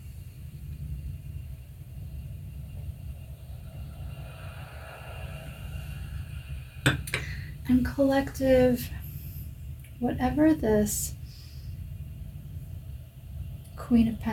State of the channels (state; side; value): identical; both; correlation 1.00